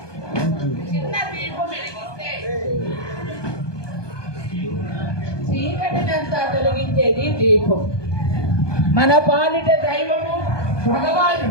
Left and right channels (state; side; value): late; right; 1.2 ms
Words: చిన్న దీపం వెలిగిస్తే చీకటినంతా తొలగించేది దీపం. మన పాలిట దైవము